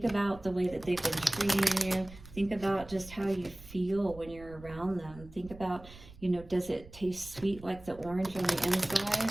about the way that they've been treating you. Think about just how you feel when you're around them. Think about, you know, does it taste sweet like the orange on the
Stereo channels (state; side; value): noise; right; rumble, 18 dB below the sound